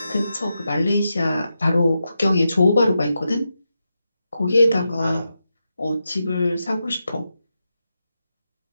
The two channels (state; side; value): inverted; both; correlation -0.88